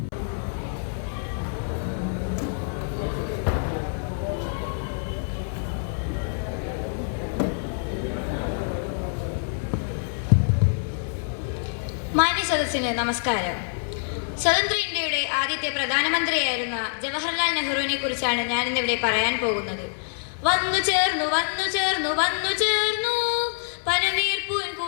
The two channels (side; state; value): right; silent; 61 dB below the other